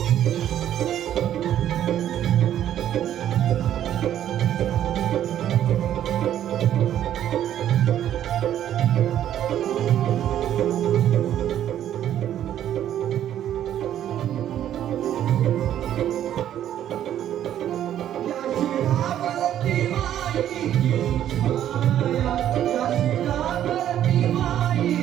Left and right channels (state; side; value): quieter; left; 11.1 dB